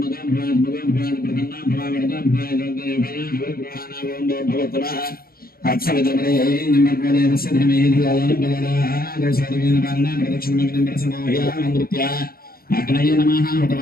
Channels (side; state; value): right; late; 0.43 ms